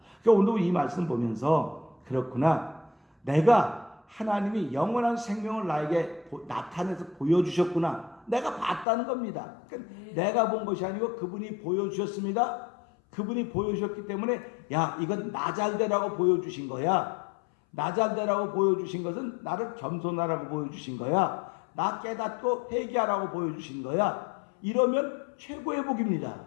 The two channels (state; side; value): drops out; right; at 8.8 s